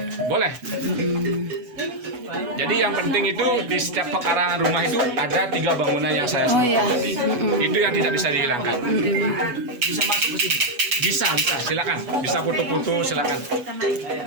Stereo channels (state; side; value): late; left; 8.1 ms